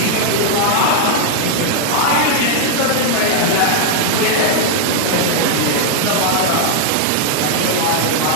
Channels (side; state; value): both; different; correlation 0.00